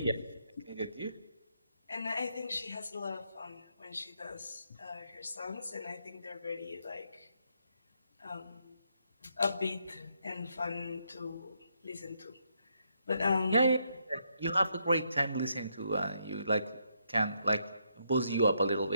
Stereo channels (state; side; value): inverted; both; correlation -0.77